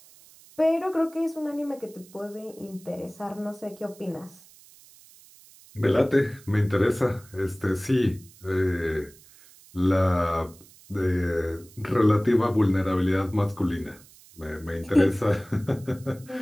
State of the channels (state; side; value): noise; right; hiss, 24 dB below the sound